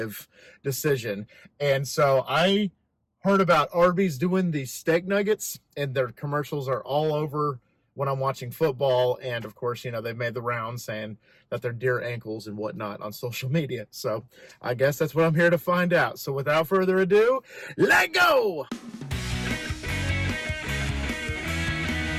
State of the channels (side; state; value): both; identical; correlation 1.00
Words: decision. And so I heard about Arby's doing these steak nuggets, and their commercials are all over when I'm watching football. And of course, you know, they've made the rounds saying that they're deer ankles and whatnot on social media. So I guess that's what I'm here to find out. So without further ado, let go!